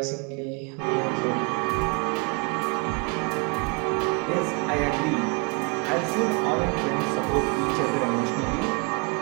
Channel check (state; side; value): quieter; left; 31.5 dB